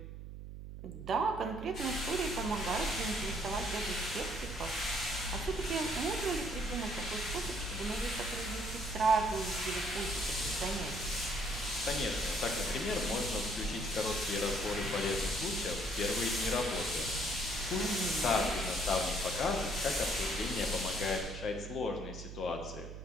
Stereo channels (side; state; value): right; noise; hum, 10 dB below the sound